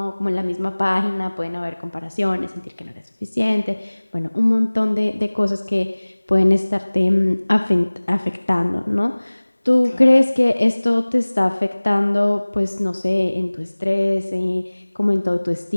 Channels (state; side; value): inverted; both; correlation -1.00